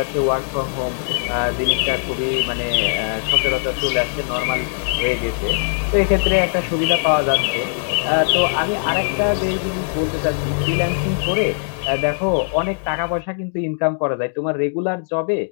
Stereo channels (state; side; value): silent; right; 66 dB below the other